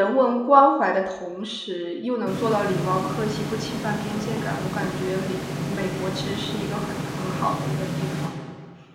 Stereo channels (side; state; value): both; identical; correlation 1.00